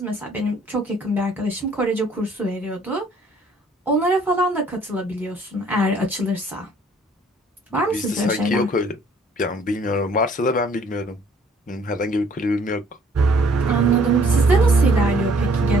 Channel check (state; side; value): normal; both; correlation 0.60